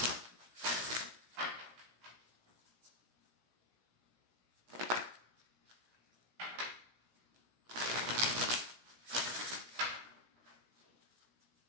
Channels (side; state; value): left; late; 17 ms